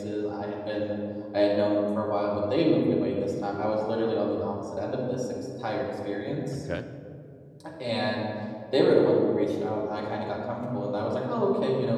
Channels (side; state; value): both; identical; correlation 1.00